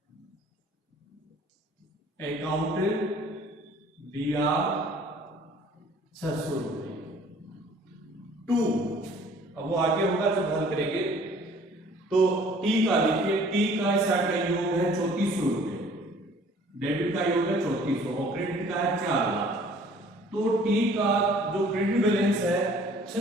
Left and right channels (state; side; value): normal; both; correlation 0.54